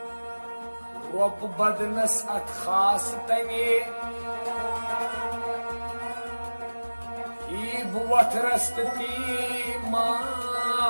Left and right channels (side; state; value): both; inverted; correlation -1.00